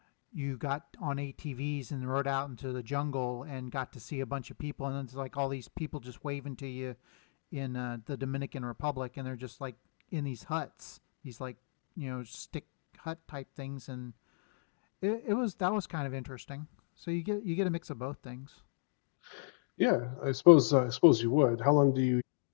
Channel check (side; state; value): right; silent; digital silence